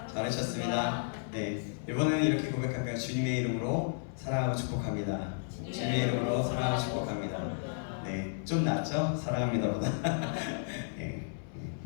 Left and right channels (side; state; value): right; silent; 56 dB below the other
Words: 잘 오셨습니다. 네, 이번에는 이렇게 고백할까요? 주님의 이름으로 사랑하고 축복합니다. 주님의 이름으로 사랑하고 축복합니다. 네, 좀 낫죠? 사랑합니다보다. 네.